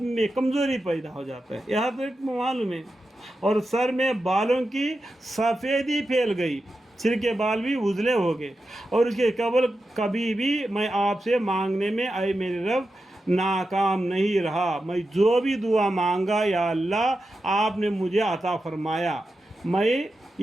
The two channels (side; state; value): both; normal; correlation 0.90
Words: में कमज़ोरी पैदा हो जाता है, यहाँ तक मालूम है। और सर में बालों की सफ़ेदी फैल गई, सिर के बाल भी उजले हो गए। और उसके कबल कभी भी मैं आपसे मांगने में आए मेरे रब नाकाम नहीं रहा। मैं जो भी दुआ मांगा या अल्लाह आपने मुझे अता फरमाया। मैं